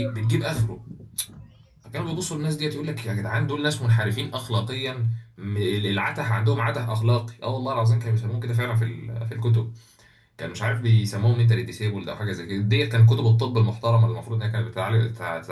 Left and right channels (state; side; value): identical; both; correlation 1.00